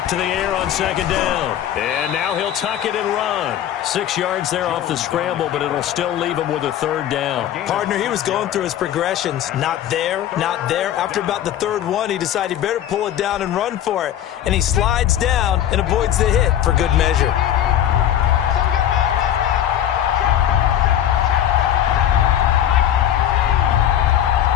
to the air on 2nd down. And now he'll tuck it and run. 6 yards there off the scramble, but it'll still leave him with a 3rd down. Partner, he was going through his progressions. Not there, not there. After about the 3rd one, he decided he better pull it down and run for it. And he slides down and avoids the hit for good measure.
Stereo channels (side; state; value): right; quieter; 10.9 dB